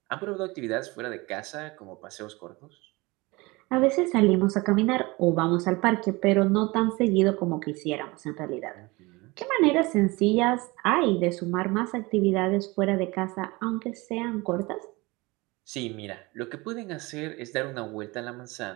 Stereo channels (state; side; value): quieter; left; 23.6 dB